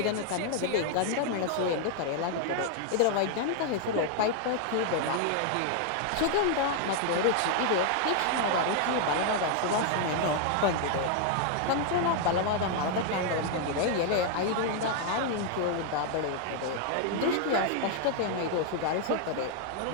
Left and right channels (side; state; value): both; different; correlation 0.00